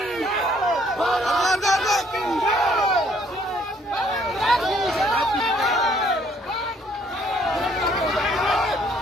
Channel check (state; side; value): normal; both; correlation 0.64